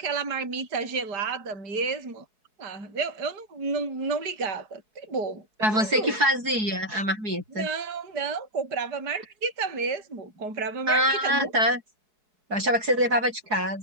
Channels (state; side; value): late; left; 4.7 ms